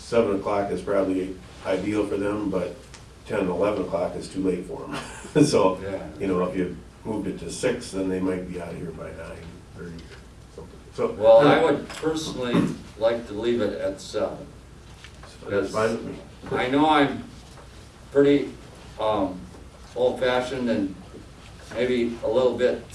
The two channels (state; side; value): identical; both; correlation 1.00